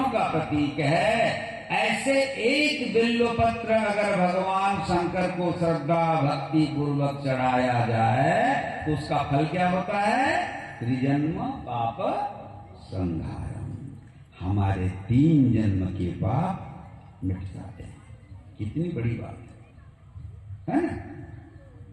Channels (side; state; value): both; identical; correlation 1.00